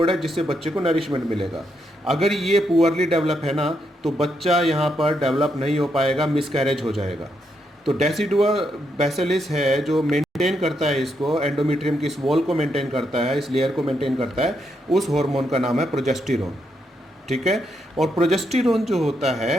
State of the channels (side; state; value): both; normal; correlation 0.80